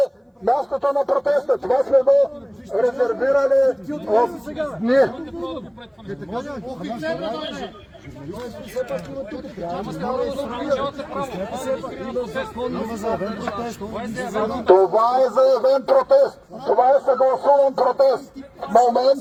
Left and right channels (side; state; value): both; identical; correlation 1.00